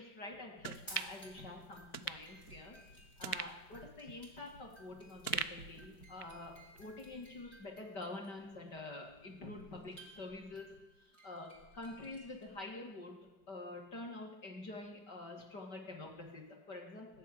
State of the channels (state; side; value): late; right; 5.2 ms